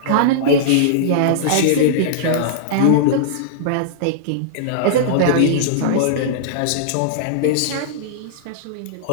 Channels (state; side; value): different; both; correlation -0.02